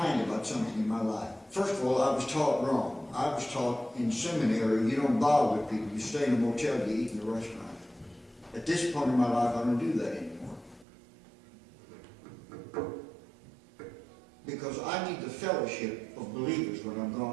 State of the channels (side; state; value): left; drops out; at 10.9 s